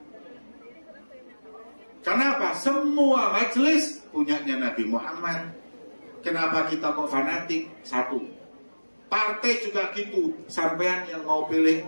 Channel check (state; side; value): inverted; both; correlation -1.00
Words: Kenapa? Semua majelis punyanya Nabi Muhammad. Kenapa kita kok fanatik? 1. Partai juga gitu. Sampean yang mau pilih